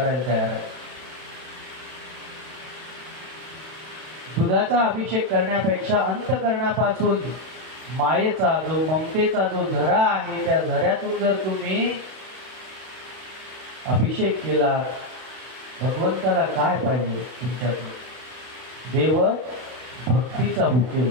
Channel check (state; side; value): late; left; 32 ms